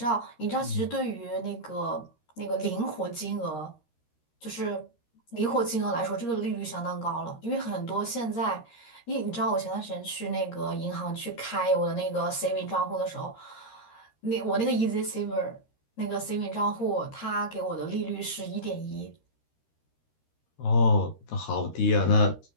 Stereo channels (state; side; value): late; right; 13 ms